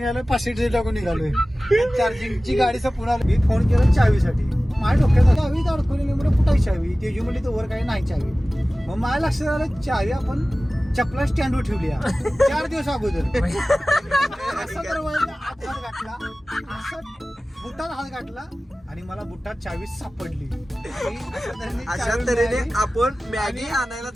आलं, 500 टाकून निघालोय. चार्जिंगची गाडीचा पुन्हा मी फोन केला चावीसाठी. माझ्या डोक्यात चावी अडकवलेली म्हणजे कुठाची चावी तेजी म्हणली तर वर काही नाही चावी. मग माझ्या लक्षात आलं चावी आपण चपला स्टँडवर ठेवली 4 दिवस अगोदर. असं तर हात घातला, असं बुटात हात घातला आणि मला बुटात चावी सापडली. अशा तऱ्हेने आपण मॅगी आणायला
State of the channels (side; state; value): both; normal; correlation 0.97